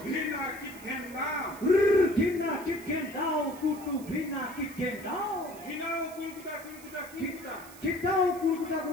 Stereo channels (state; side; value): noise; right; hiss, 19 dB below the sound